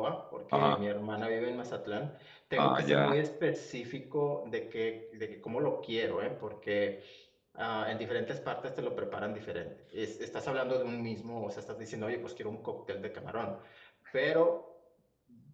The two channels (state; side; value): identical; both; correlation 1.00